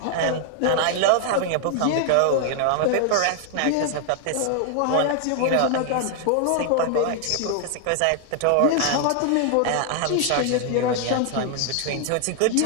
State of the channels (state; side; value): different; both; correlation 0.00